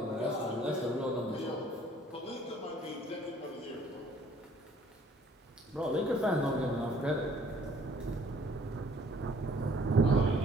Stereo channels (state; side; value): normal; both; correlation 0.59